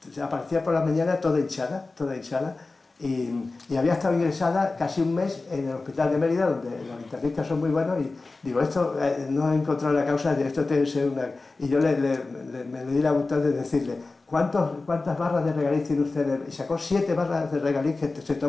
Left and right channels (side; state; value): right; quieter; 3.5 dB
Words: aparecía por la mañana toda hinchada, y había estado ingresada casi un mes en el hospital de Mérida, donde los internistas son muy buenos, y digo, esto no he encontrado la causa de esto, tiene que ser una... Y yo me le di la voluntad de decirle, ¿cuántas barras de regaliz tiene usted? Y sacó 7 barras de regaliz que se